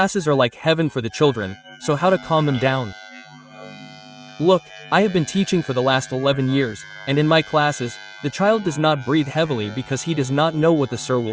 are like heaven for the children, so how to calm them down? Look, I have been teaching for the last 11 years, and in my classes, the child does not breathe heavily because he does not know what the sir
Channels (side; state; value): both; identical; correlation 1.00